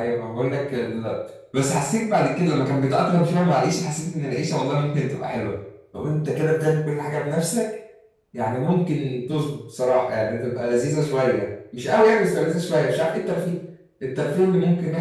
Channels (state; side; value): identical; both; correlation 1.00